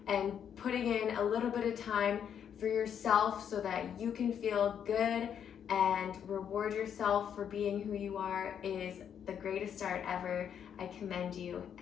and putting in a little bit of time for yourself so that you can feel good and reward yourself for being who you are is the greatest start ever. I commend you,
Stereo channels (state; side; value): quieter; right; 8.5 dB